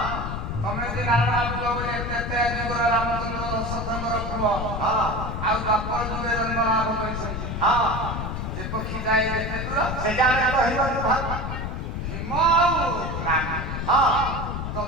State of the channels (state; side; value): noise; left; rumble, 4 dB below the sound